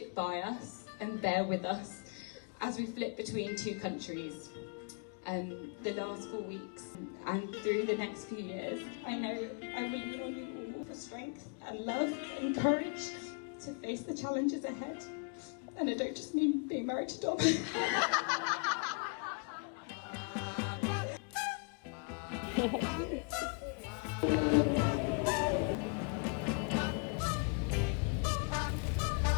by us and bear with us as we flip between two countries the last 4 weeks and through the next few years. I know I lean on you all for strength and love and courage to face the challenges ahead. And I don't just mean being married to Dom.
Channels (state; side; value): quieter; right; 39.2 dB